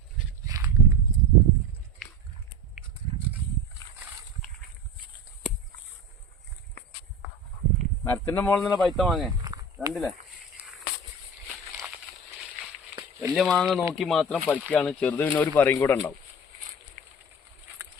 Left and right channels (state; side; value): normal; both; correlation 0.31